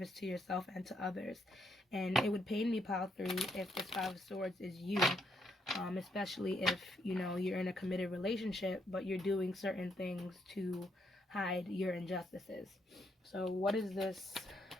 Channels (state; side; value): normal; both; correlation 0.75